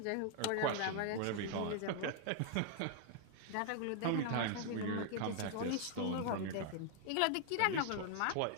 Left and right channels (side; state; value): both; different; correlation 0.00